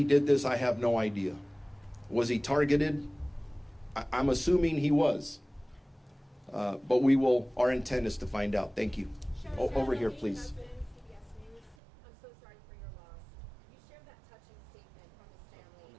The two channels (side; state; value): left; drops out; at 11.8 s